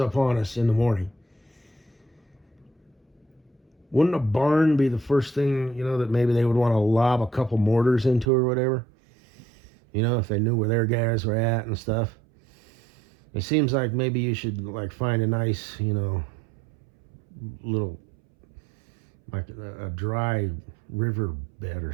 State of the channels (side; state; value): left; drops out; at 8.2 s